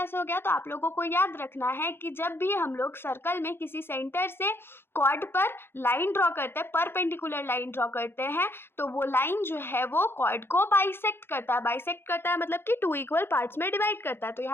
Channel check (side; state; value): right; late; 0.11 ms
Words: हो गया? तो आप लोगों को याद रखना है कि जब भी हम लोग सर्कल में किसी सेंटर से कॉर्ड पर लाइन ड्रॉ करते हैं, परपेंडिकुलर लाइन ड्रॉ करते हैं, तो वो लाइन जो है वो कॉर्ड को बाइसेक्ट करता है। बाइसेक्ट करता है मतलब कि टू इक्वल पार्ट्स में डिवाइड करता है। तो